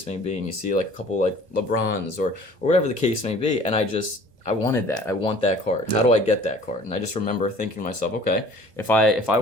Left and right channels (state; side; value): late; left; 1.4 ms